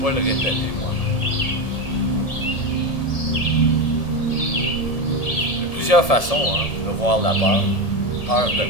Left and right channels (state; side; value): late; right; 1.7 ms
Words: le répéter moi-même. Il y a plusieurs façons de voir la peur. Peur de